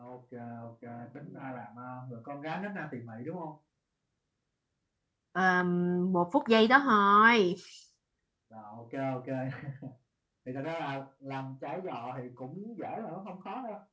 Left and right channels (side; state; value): both; identical; correlation 1.00